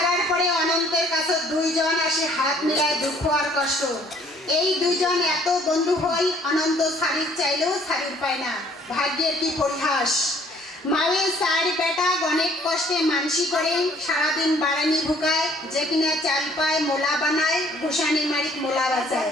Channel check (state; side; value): normal; both; correlation 0.59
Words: পরে অনন্তের কাছে দুইজন আসে হাত মিলায় দুঃখ আর কষ্ট। এই দুইজন এত বন্ধু হই অনন্ত শাড়ির চাইলেও শাড়ির পায় না। ভাগ্যের কি পরিহাস। মায়ের চার বেটা অনেক কষ্টে মানসি করে সারাদিন বাড়ানি ভুকায়, যে কিনা চাল পায় মোলা বানায়, গোসানি মারিক মোলা বাজায়।